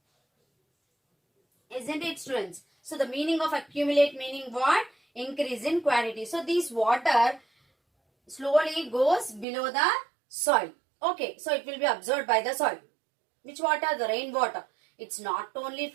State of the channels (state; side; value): drops out; left; at 9.5 s